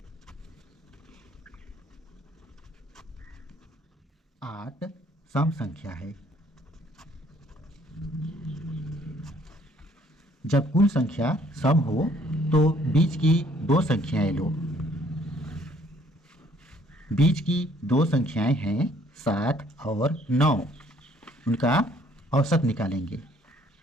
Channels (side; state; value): both; normal; correlation 0.62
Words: 8 सम संख्या है। जब कुल संख्या सम हो तो बीच की दो संख्याएं लो। बीच की दो संख्याएं हैं 7 और 9। उनका औसत निकालेंगे।